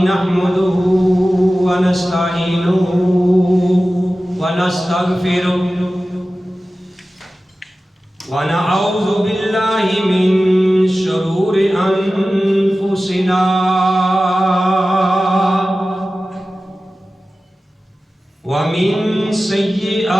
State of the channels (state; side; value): normal; both; correlation 0.95